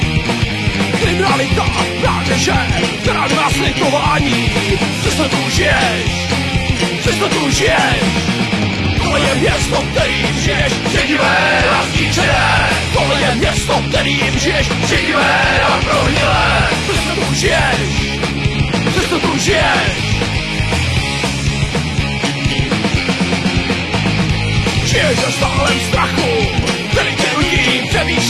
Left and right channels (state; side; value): identical; both; correlation 1.00